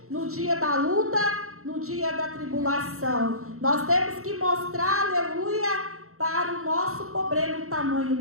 no dia da luta, no dia da tribulação. Nós temos que mostrar, aleluia, para o nosso problema, o tamanho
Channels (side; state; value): left; late; 0.63 ms